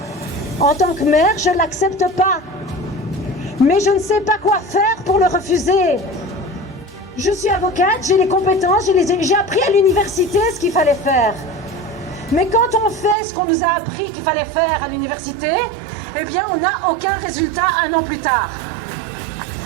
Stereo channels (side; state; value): left; drops out; at 13.2 s